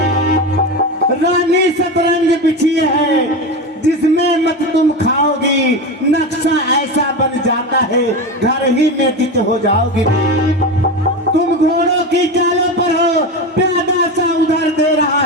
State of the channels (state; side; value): normal; both; correlation 0.21